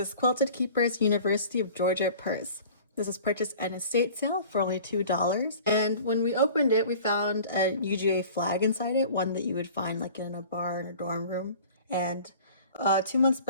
Quilted Keepers University of Georgia purse. This was purchased at an estate sale for only $2. And when we opened it, we found a UGA flag inside it, one that you would find like in a bar in a dorm room. And 2 months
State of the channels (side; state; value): both; inverted; correlation -0.44